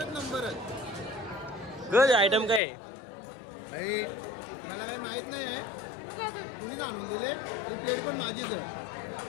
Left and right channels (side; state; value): right; drops out; at 2.6 s